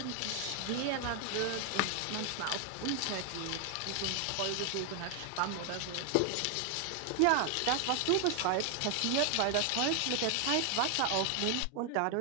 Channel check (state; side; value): different; both; correlation 0.00